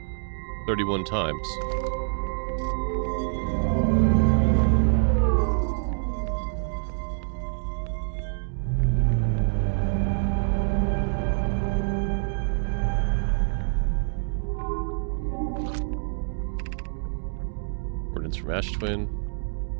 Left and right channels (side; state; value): left; silent; digital silence